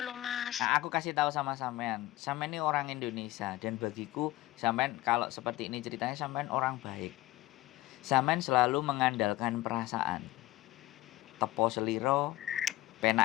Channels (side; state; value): right; quieter; 17.5 dB